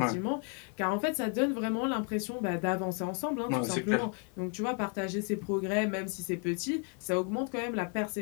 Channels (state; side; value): quieter; right; 39.5 dB